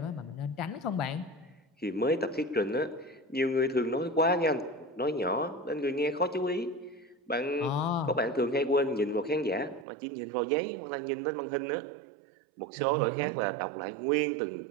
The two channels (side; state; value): left; drops out; at 9.9 s